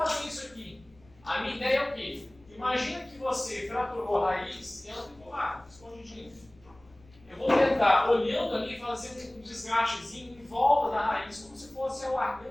isso aqui. A minha ideia é o quê? Imagina que você fraturou a raiz e ela ficou lá, escondidinha. Eu vou tentar, olhando ali, fazer um desgastezinho em volta da raiz, como se fosse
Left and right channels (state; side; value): noise; left; rumble, 28 dB below the sound